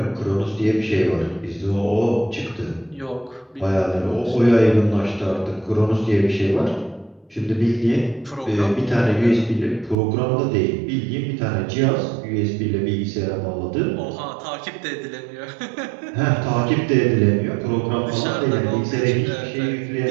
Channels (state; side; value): drops out; left; at 10.0 s